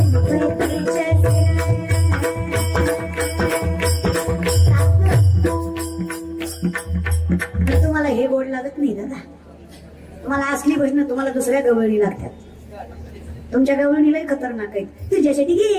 तुम्हाला हे गोड लागत नाही दादा. तुम्हाला असली भजनं तुम्हाला दुसऱ्या गवळणी लागतात. तुमच्या गवळणीला खतरनाक आहे. तुझ्यासाठी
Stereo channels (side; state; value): both; identical; correlation 1.00